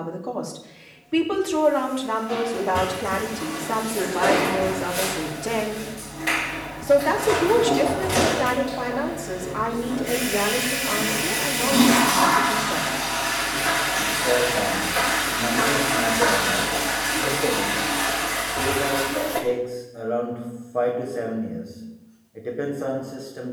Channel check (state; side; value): identical; both; correlation 1.00